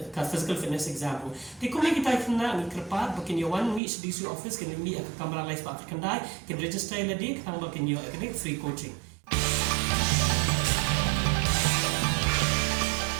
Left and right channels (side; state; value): left; drops out; at 3.8 s